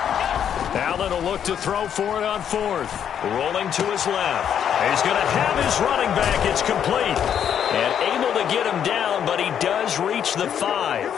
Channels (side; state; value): right; quieter; 8.9 dB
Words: Allen will look to throw for it on 4th. Rolling to his left. He's going to have his running back. It's complete. And able to get him down, but he does reach the 5.